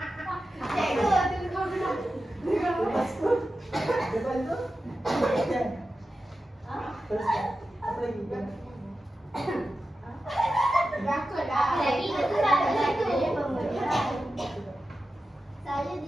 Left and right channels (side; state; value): both; normal; correlation 0.92